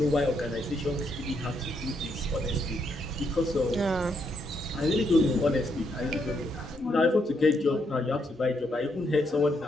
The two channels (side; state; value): both; normal; correlation 0.77